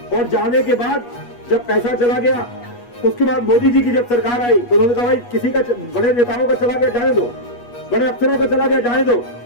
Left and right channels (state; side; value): late; right; 8.3 ms